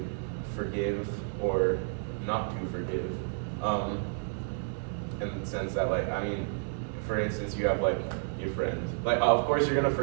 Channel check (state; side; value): silent; left; digital silence